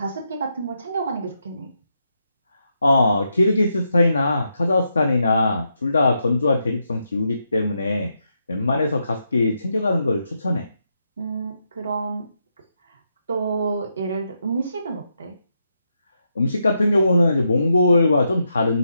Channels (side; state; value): both; inverted; correlation -0.82